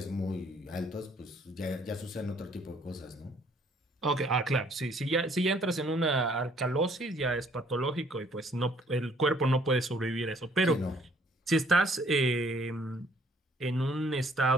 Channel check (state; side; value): normal; both; correlation 0.62